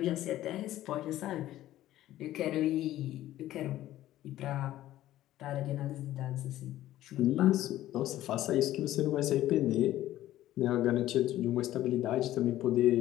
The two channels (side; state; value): right; quieter; 14.2 dB